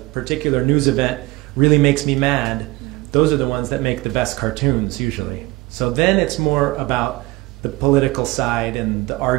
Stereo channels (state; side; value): quieter; left; 21.5 dB